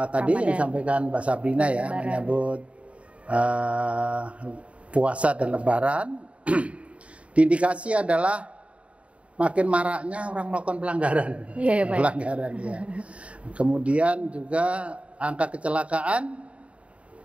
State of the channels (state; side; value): late; left; 0.063 ms